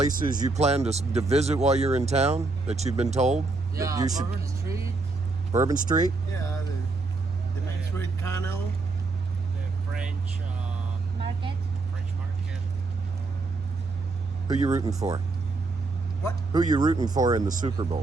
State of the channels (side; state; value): left; quieter; 3.6 dB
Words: you plan to visit while you're in town that you've been told that you should? Bourbon Street. Bourbon Street. Yeah, the Main Street Canal. The French Market. French market. Who you rooting for? What? Who you rooting for in the Super